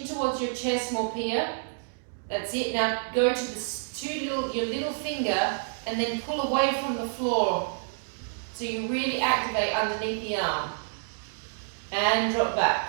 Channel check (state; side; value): silent; left; digital silence